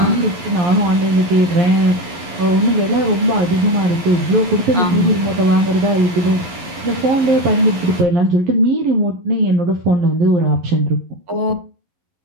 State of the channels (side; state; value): left; late; 12 ms